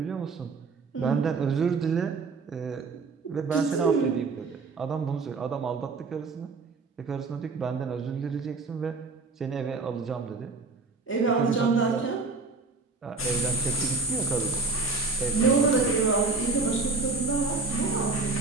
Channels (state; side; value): quieter; left; 4.1 dB